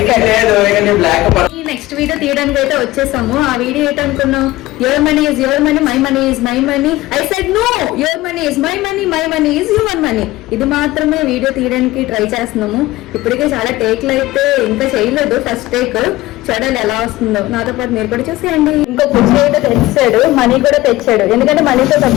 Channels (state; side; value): quieter; right; 17.9 dB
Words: నెక్స్ట్ వీడియో తీయడానికి అయితే వచ్చేసాము. ఆ వీడియో ఏంటనుకున్నాం, your money is your money, my money is my money. I said no, your money is my money, my money is your money. ఇది మాత్రమే వీడియో తీయడానికి ట్రై చేస్తున్నాము. ఇప్పటికే చాలా టేక్లు అయితే ఇంకా చేయలేదు, ఫస్ట్ టేక్. చూడాలి ఎలా వస్తుందో. నాతో పాటు మీరు కూడా చూసేయండి. ఇంకో కుర్చీ అయితే తెచ్చాడు, మనీ కూడా తెచ్చాడు. ఎందుకంటే మనీతో